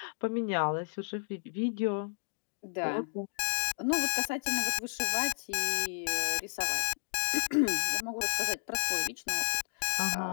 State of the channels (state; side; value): silent; right; digital silence